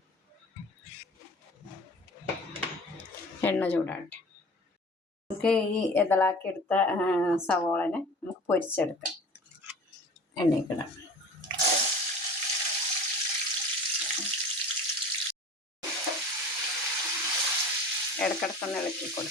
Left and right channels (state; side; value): normal; both; correlation 0.40